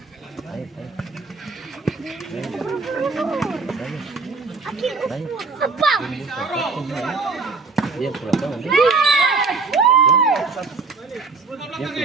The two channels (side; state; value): left; quieter; 4.2 dB